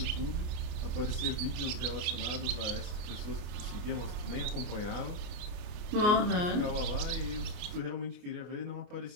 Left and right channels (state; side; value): late; left; 29 ms